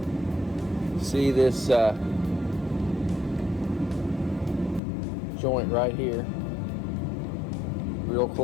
See this joint right here, real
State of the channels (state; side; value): drops out; right; at 4.8 s